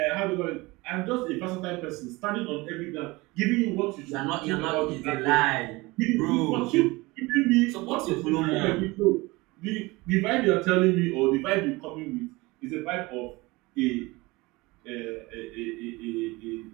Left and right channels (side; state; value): left; quieter; 22.6 dB